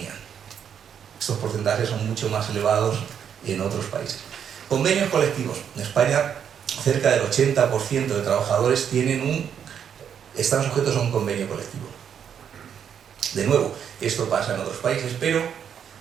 Estos porcentajes son mucho más elevados en otros países. Convenios colectivos. En España, cerca del 80% de trabajadores están sujetos a un convenio colectivo. De nuevo, esto pasa en otros países, pero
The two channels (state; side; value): quieter; left; 8.2 dB